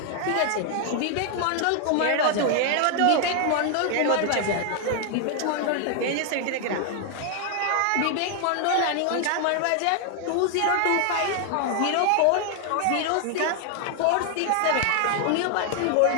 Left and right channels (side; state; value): both; different; correlation 0.00